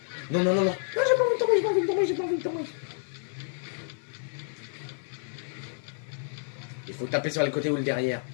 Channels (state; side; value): silent; right; 58 dB below the other